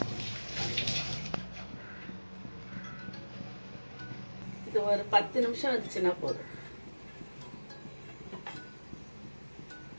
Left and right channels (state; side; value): inverted; both; correlation -1.00